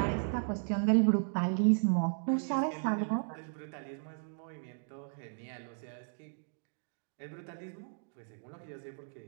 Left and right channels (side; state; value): left; silent; digital silence